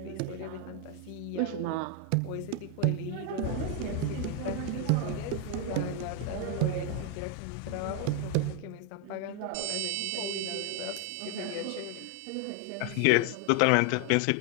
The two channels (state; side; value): different; both; correlation 0.01